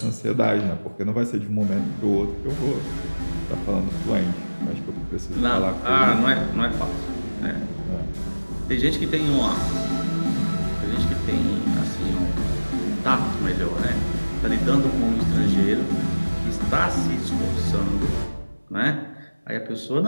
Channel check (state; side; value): inverted; both; correlation -1.00